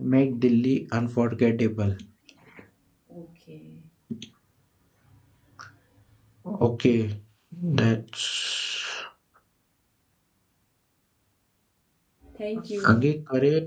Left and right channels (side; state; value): both; identical; correlation 1.00